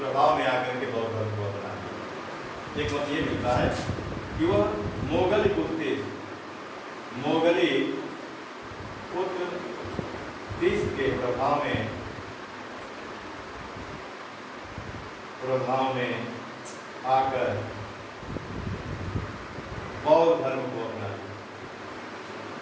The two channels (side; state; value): both; identical; correlation 1.00